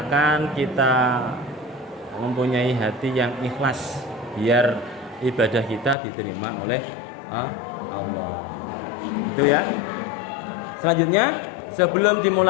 kita mempunyai hati yang ikhlas biar ibadah kita diterima oleh Allah. Itu ya. Selanjutnya, sebelum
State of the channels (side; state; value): right; drops out; at 6.0 s